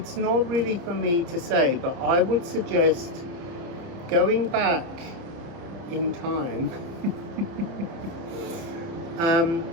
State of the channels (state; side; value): late; left; 30 ms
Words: not really for me to say, but I would suggest going back in time,